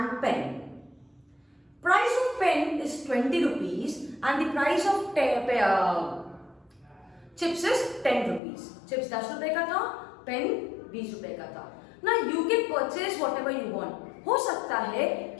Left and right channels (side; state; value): right; drops out; at 8.4 s